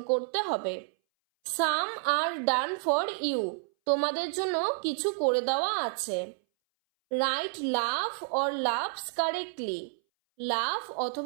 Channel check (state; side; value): silent; left; 58 dB below the other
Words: করতে হবে। সাম আর ডান ফর ইউ তোমাদের জন্য কিছু করে দেওয়া আছে। Write love or loves correctly. Love